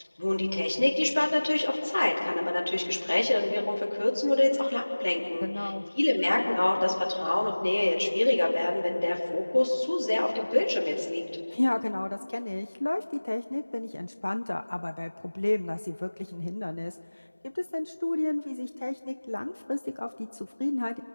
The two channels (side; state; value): both; inverted; correlation -1.00